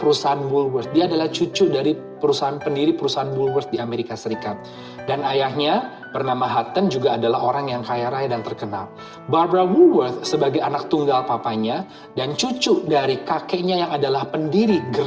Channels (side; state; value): both; identical; correlation 1.00